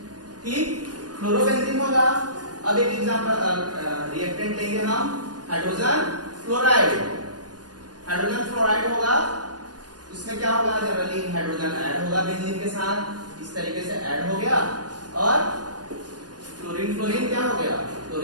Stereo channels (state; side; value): late; left; 0.69 ms